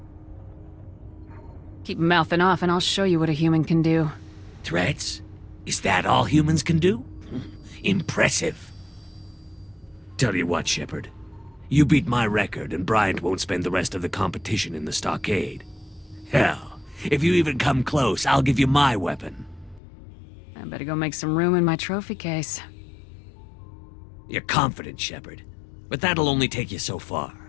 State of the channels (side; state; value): right; drops out; at 19.8 s